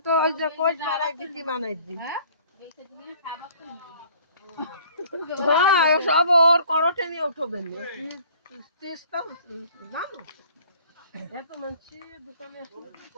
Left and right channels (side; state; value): both; inverted; correlation -0.54